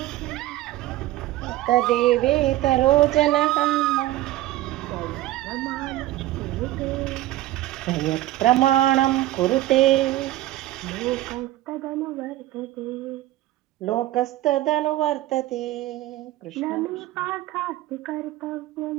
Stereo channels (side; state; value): left; quieter; 15.7 dB